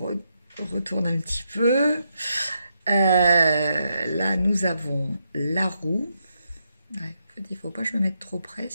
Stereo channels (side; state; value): both; inverted; correlation -0.81